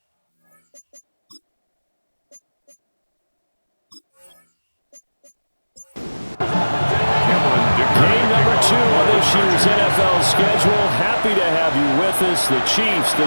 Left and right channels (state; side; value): inverted; both; correlation -1.00